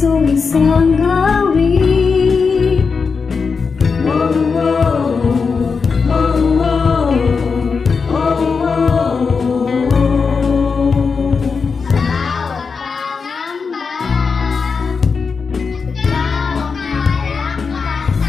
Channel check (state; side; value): quieter; right; 5.2 dB